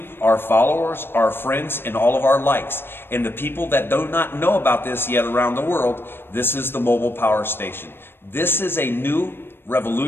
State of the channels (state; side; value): late; right; 0.10 ms